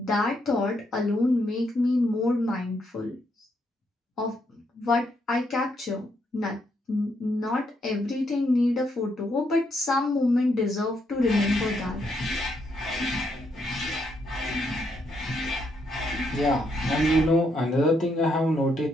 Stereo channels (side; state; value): both; normal; correlation 0.76